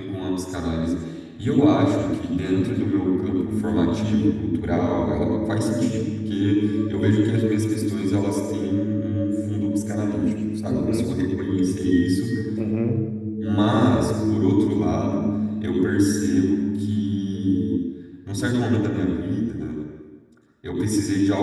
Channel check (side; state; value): both; identical; correlation 1.00